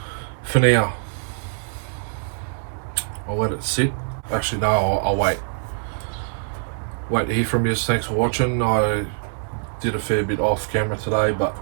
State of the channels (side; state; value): left; silent; digital silence